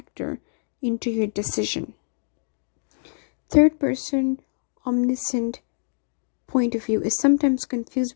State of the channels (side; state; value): right; silent; digital silence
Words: into your decision. Third person omniscient point of view is sometimes confused